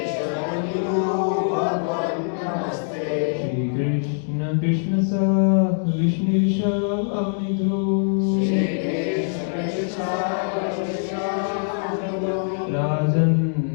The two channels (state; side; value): silent; right; digital silence